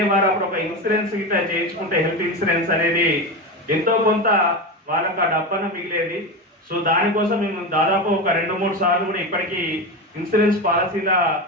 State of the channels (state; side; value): normal; both; correlation 0.20